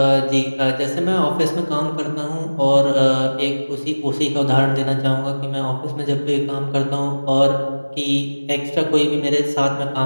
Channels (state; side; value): inverted; both; correlation -1.00